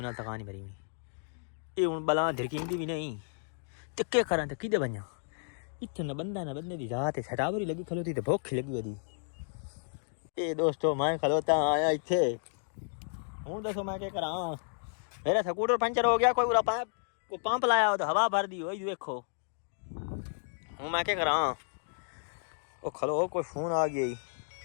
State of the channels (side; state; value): right; silent; digital silence